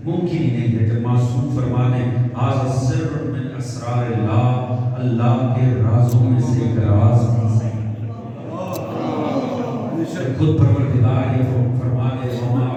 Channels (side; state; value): both; identical; correlation 1.00